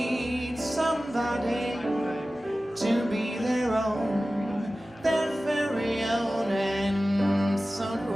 somebody to be their own, their very own, and so do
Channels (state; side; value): normal; both; correlation 0.96